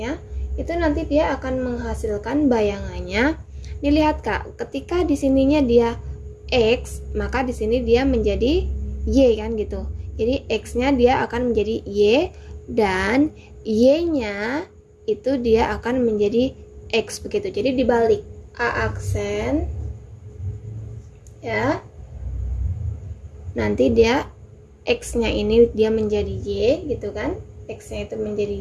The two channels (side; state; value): both; identical; correlation 1.00